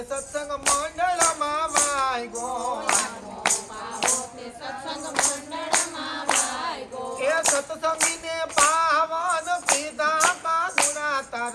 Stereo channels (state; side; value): identical; both; correlation 1.00